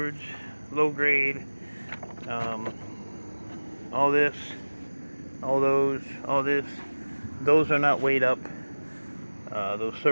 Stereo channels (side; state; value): both; inverted; correlation -1.00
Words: low grade, all this, all those, all this, those are not weighed up. Those